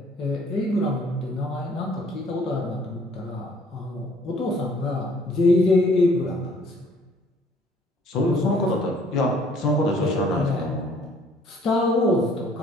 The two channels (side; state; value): both; normal; correlation 0.59